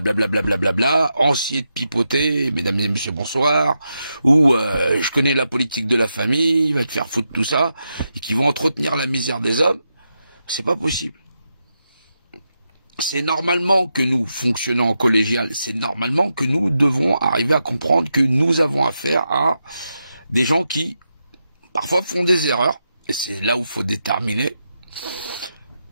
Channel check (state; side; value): inverted; both; correlation -0.86